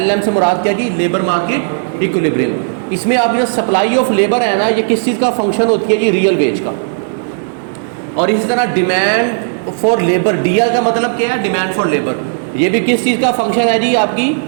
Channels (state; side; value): silent; left; digital silence